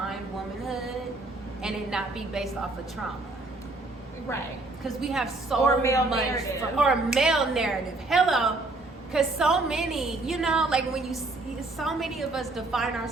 womanhood and it not be based off of trauma. Right. Because we have so much or a male narrative. Hello. Because so many, like when you see so many of us define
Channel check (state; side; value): quieter; left; 3.1 dB